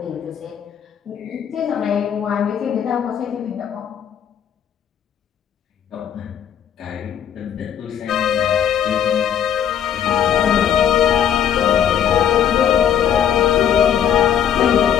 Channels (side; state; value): right; quieter; 9.1 dB